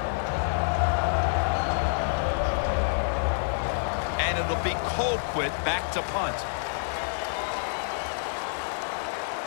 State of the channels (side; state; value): right; silent; 60 dB below the other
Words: And it'll be Colquitt back to punt.